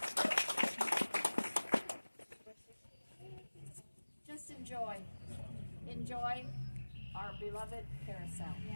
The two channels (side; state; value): both; inverted; correlation -1.00